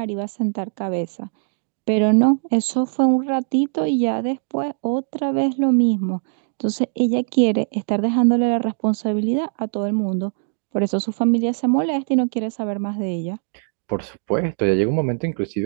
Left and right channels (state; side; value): silent; left; digital silence